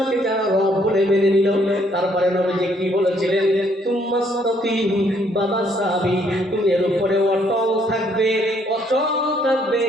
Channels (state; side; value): normal; both; correlation 0.67